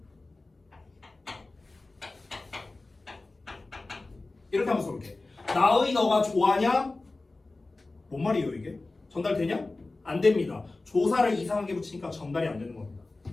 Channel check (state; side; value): quieter; right; 3.2 dB